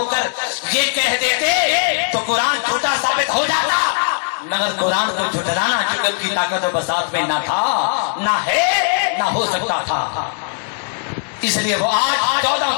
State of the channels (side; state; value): right; silent; digital silence